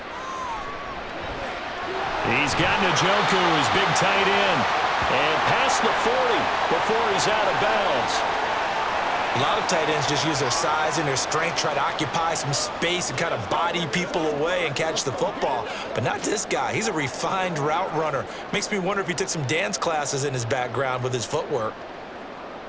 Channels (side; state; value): both; identical; correlation 1.00